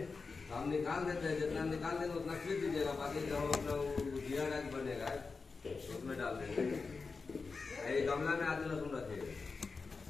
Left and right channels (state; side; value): quieter; right; 4.5 dB